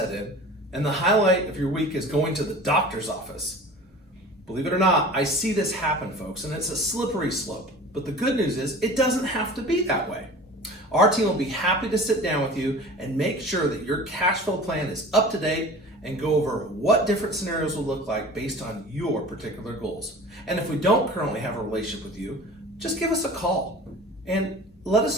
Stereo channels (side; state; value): both; normal; correlation 0.40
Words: in, and the highlight of your week is going to the doctor's office. Believe it or not, I see this happen, folks, and it's a slippery slope. But the good news is it doesn't have to be that way. Our team will be happy to sit down with you and make sure that your cash flow plan is up to date and go over what different scenarios will look like based on your particular goals. And if we don't currently have a relationship with you, just give us a call and let